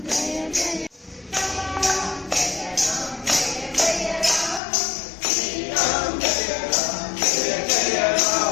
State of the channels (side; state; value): right; drops out; at 4.6 s